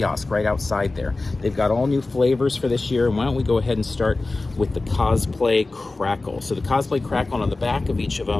right outside there. They've got all new flavors for this year. And why don't we go ahead and start with the Cosplay Crackle. So the Cosplay Crackle, on the back of each of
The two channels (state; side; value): quieter; right; 3.3 dB